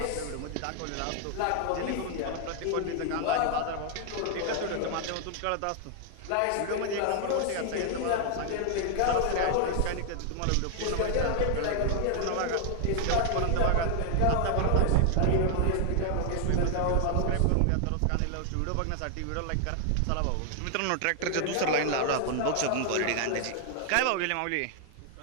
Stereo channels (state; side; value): different; both; correlation 0.00